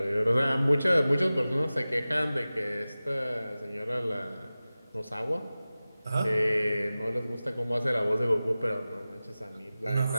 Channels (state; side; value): inverted; both; correlation -0.96